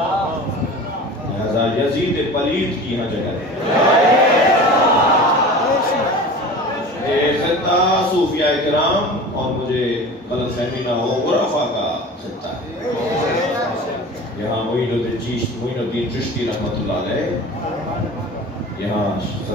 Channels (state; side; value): normal; both; correlation 0.36